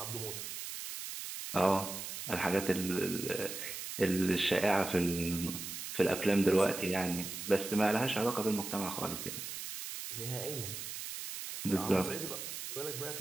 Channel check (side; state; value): right; noise; hiss, 7 dB below the sound